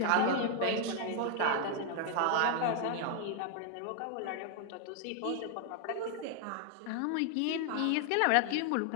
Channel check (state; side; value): different; both; correlation 0.00